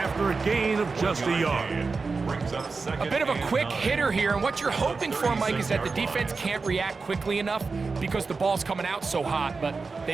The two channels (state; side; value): quieter; left; 4.4 dB